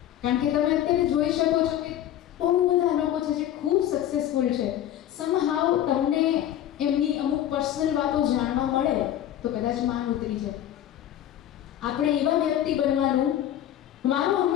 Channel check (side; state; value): right; quieter; 11.7 dB